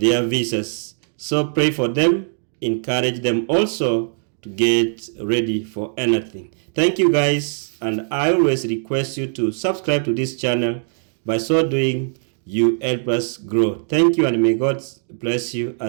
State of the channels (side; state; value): left; silent; 60 dB below the other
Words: visas. So pray for them, encourage them also to get ready for anything. Thank you guys, and I always request you to subscribe to this channel. By so doing, you help us grow. Thank you, and may God bless you